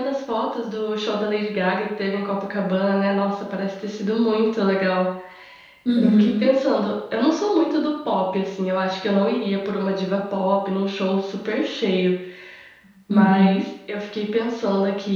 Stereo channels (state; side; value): identical; both; correlation 1.00